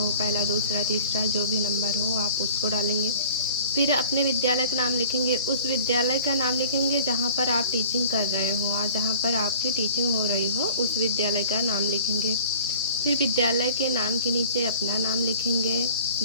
पहला दूसरा तीसरा जो भी नंबर हो आप उसको डालेंगे। फिर अपने विद्यालय का नाम लिखेंगे। उस विद्यालय का नाम लिखेंगे जहाँ पर आप टीचिंग कर रहे हो और जहाँ पर आपकी टीचिंग हो रही हो उस विद्यालय का नाम लिखेंगे। फिर विद्यालय के नाम के नीचे अपना नाम लिखेंगे।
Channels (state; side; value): inverted; both; correlation -0.46